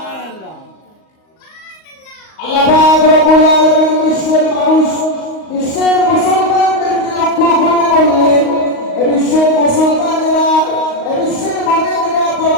আল্লাহ পাক রব্বুল আলামিন বিশ্বের মানুষ, বিশ্বের মুসলমানদেরকে লক্ষ্য করে বললেন, বিশ্বের মুসলমানেরা, বিশ্বের মুমিনেরা,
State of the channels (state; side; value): late; right; 38 ms